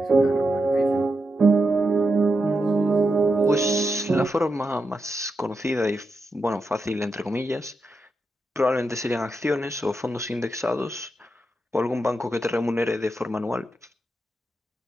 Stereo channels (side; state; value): both; normal; correlation 0.86